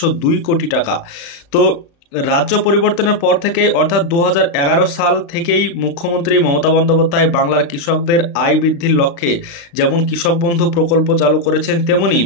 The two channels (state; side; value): late; right; 35 ms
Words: কোটি টাকা। তো রাজ্য পরিবর্তনের পর থেকে অর্থাৎ 2011 সাল থেকেই মুখ্যমন্ত্রী মমতা বন্দ্যোপাধ্যায় বাংলার কৃষকদের আয় বৃদ্ধির লক্ষ্যে যেমন কৃষক বন্ধু প্রকল্প চালু করেছেন, তেমনি